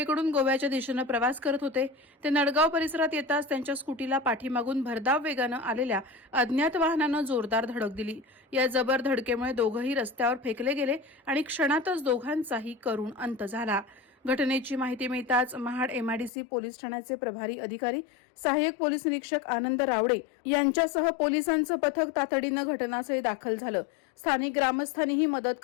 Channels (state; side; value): drops out; right; at 16.3 s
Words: गोव्याच्या दिशेनं प्रवास करत होते। ते नडगाव परिसरात येताच त्यांच्या स्कूटीला पाठीमागून भरधाव वेगानं आलेल्या अज्ञात वाहनानं जोरदार धडक दिली। या जबर धडकेमुळे दोघंही रस्त्यावर फेकले गेले आणि क्षणातच दोघांचाही करुण अंत झाला। घटनेची माहिती मिळताच महाड एमआयडीसी पोलीस ठाण्याचे प्रभारी अधिकारी सहाय्यक पोलीस निरीक्षक आनंद रावडे यांच्यासह पोलिसांचं पथक तातडीनं घटनास्थळी दाखल झालं। स्थानिक ग्रामस्थांनीही मदत